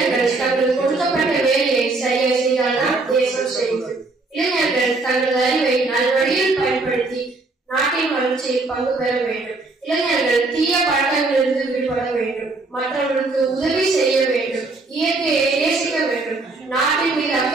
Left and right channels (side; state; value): left; quieter; 3.4 dB